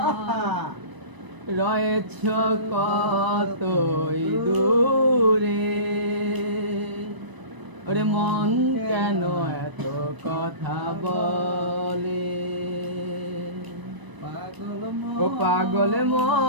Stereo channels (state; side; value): late; left; 1.0 ms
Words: রয়েছ কতই দূরে। ওরে মন কেন এত কথা বলে, ও পাগল